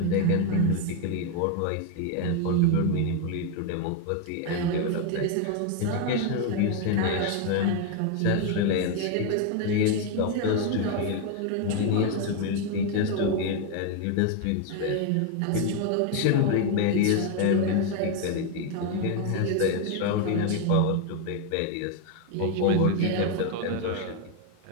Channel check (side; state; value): both; different; correlation 0.01